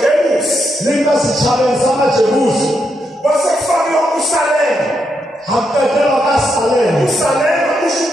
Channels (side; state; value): both; normal; correlation 0.81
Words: Linka sithabeni samajebusi. Kwasekufakwa uSalema. Hakuqedelwa kaSalem. uSalema usho